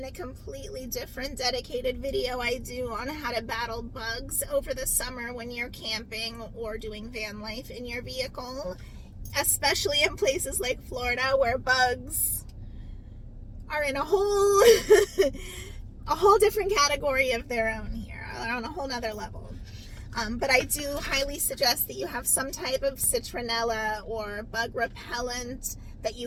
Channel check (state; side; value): identical; both; correlation 1.00